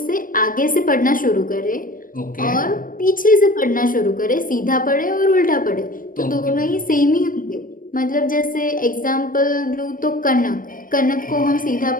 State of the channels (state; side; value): late; right; 0.40 ms